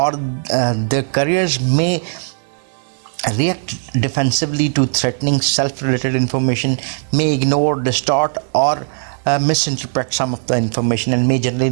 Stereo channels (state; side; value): silent; left; digital silence